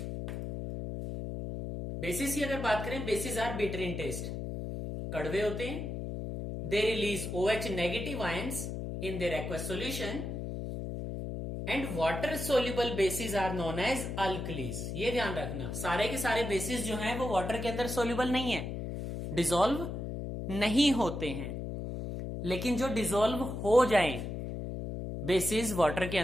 बेसिस की अगर बात करें, bases are bitter in taste, कड़वे होते हैं। They release OH negative ions in their aqueous solution and water soluble bases are known as alkalis. ये ध्यान रखना, सारे के सारे बेसिस जो हैं वो वाटर के अंदर सोल्यूबल नहीं है, डिसॉल्व नहीं होते हैं, लेकिन जो डिसॉल्व हो जाएं बेसिस वाटर के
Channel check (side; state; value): left; noise; hum, 5 dB below the sound